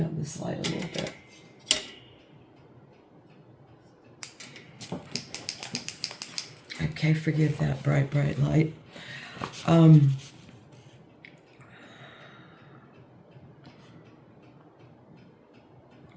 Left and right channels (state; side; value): identical; both; correlation 1.00